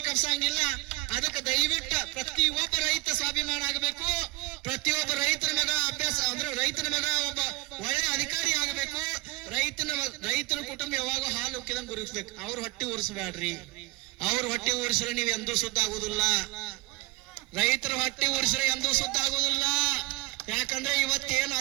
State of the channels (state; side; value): quieter; left; 22.1 dB